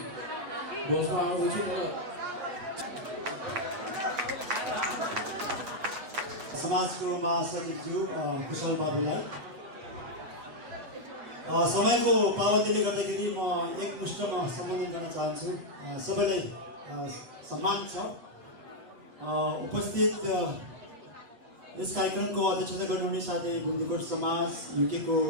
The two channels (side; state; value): left; late; 8.1 ms